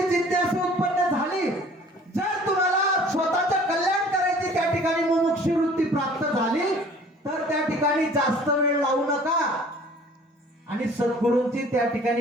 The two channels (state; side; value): normal; both; correlation 0.51